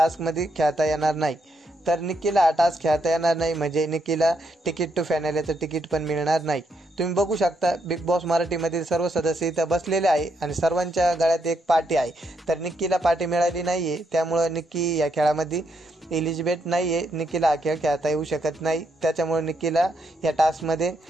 खेळता येणार नाही। तर निक्कीला हा टास्क खेळता येणार नाही म्हणजे निक्कीला तिकीट टू फायनलचं तिकीट पण मिळणार नाही। तुम्ही बघू शकता बिग बॉस मराठीमधील सर्व सदस्य इथं बसलेले आहे आणि सर्वांच्या गळ्यात एक पार्टी आहे। तर निक्कीला पार्टी मिळाली नाही आहे, त्यामुळे निक्की या खेळामध्ये एलिजिबल नाही आहे। निक्कीला हा खेळ खेळता येऊ शकत नाही, त्याच्यामुळे निक्कीला या टास्कमध्ये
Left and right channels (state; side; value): normal; both; correlation 0.78